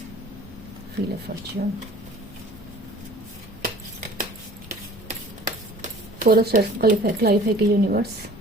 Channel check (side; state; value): both; normal; correlation 0.48